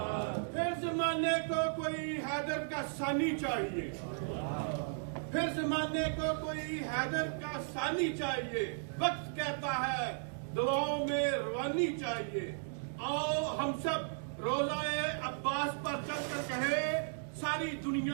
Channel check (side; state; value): left; silent; digital silence